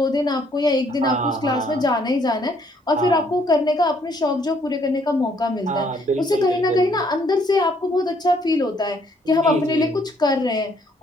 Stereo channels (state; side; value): normal; both; correlation 0.66